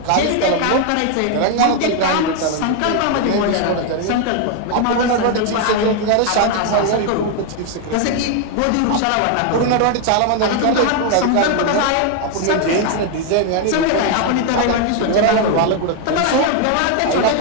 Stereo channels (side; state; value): both; different; correlation 0.01